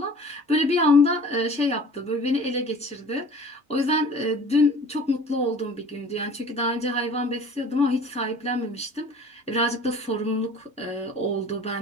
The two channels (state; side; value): normal; both; correlation 0.46